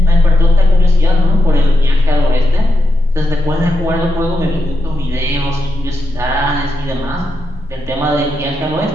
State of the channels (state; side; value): normal; both; correlation 0.86